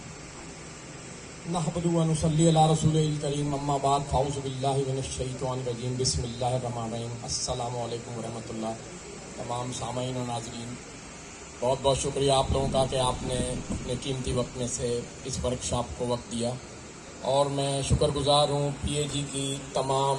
नहमदु व नुसल्ली अला रसूलिल करीम अम्मा बाद फाऊज़ु बिल्लाहि मिनश शैतानिर रजीम बिस्मिल्लाहिर रहमानिर रहीम। अस्सलामु अलैकुम व रहमतुल्लाह। तमाम सामाईन और नाज़रीन, बहुत बहुत शुक्रिया आप लोगों का कि आपने अपने कीमती वक्त में से इस वर्कशॉप को वक्त दिया। और मैं शुक्रगुजार हूँ पीएजी की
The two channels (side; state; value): both; identical; correlation 1.00